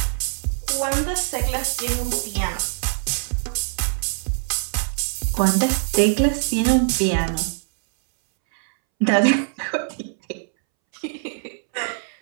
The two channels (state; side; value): silent; left; 63 dB below the other